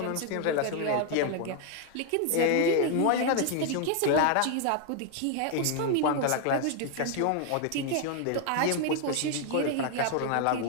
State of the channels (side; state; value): both; different; correlation 0.00